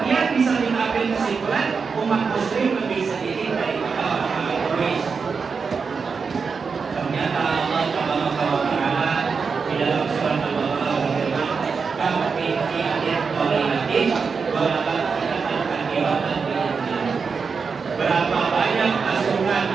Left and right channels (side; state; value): left; quieter; 5.3 dB